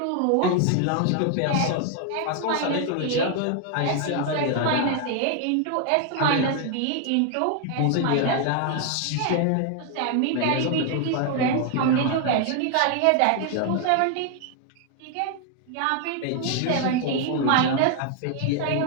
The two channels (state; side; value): different; both; correlation 0.00